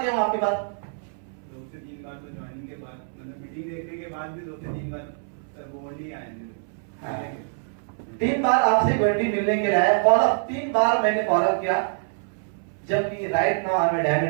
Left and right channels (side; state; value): left; silent; 61 dB below the other